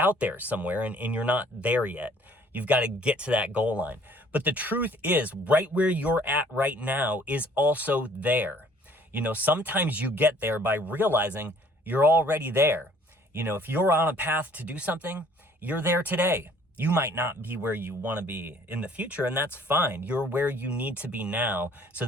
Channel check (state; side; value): normal; both; correlation 0.57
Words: there somewhere and you're not there yet. You've got to get to that goal line. But the truth is, right where you're at right now is also there. Sometimes you get there by realizing you're already there. If you're on a path to do something, you're there today. You might not be where you want to be in the future, and that's fine. You're where you need to be now so